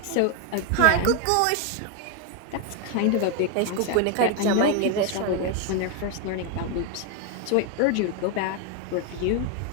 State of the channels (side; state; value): both; different; correlation 0.01